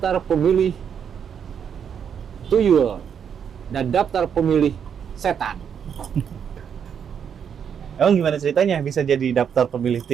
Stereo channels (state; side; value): quieter; left; 7.8 dB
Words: pemilih tuyul dan daftar pemilih setan. Emang gimana ceritanya bisa jadi daftar pemilih